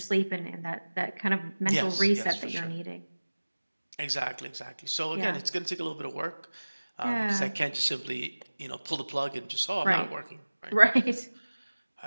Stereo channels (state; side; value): inverted; both; correlation -1.00